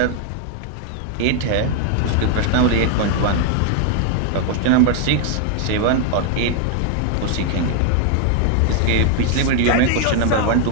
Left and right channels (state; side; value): different; both; correlation 0.00